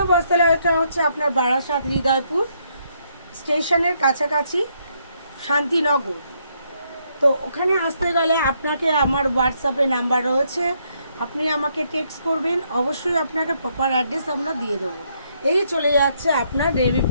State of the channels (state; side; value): inverted; both; correlation -0.74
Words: বস্ত্রালয়টা হচ্ছে আপনার বারাসাত হৃদয়পুর স্টেশনের কাছাকাছি, শান্তিনগর। তো ওখানে আসতে গেলে আপনাকে আমার হোয়াটসঅ্যাপে নাম্বার রয়েছে, আপনি আমাকে টেক্সট করবেন, অবশ্যই আপনাকে প্রপার অ্যাড্রেস আমরা দিয়ে দেবো। এই চলে যাচ্ছে আপনার নেভি